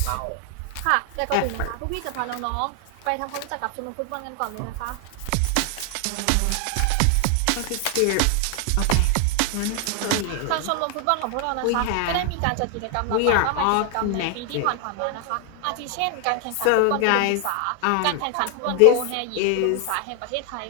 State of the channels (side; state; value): both; different; correlation 0.00